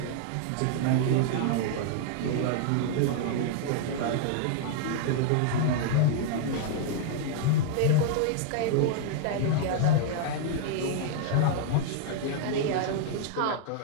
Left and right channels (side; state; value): both; different; correlation -0.01